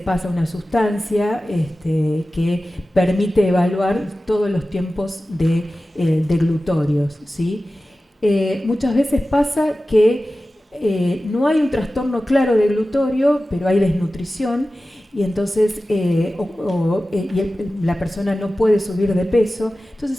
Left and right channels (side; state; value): both; normal; correlation 0.95